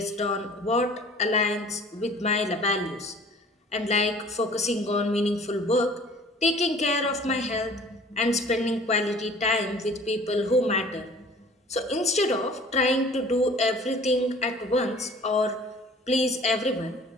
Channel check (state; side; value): normal; both; correlation 0.49